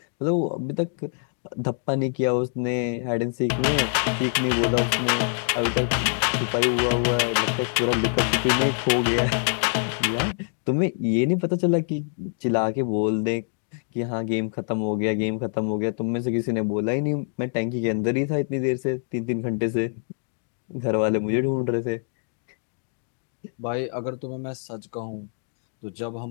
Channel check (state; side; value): silent; right; 57 dB below the other